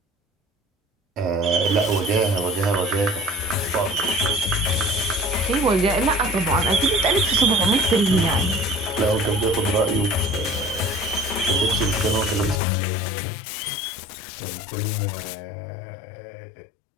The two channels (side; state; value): right; drops out; at 12.6 s